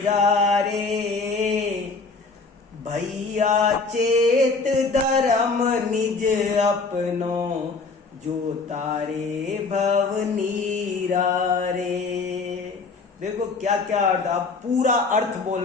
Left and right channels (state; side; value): quieter; right; 4.1 dB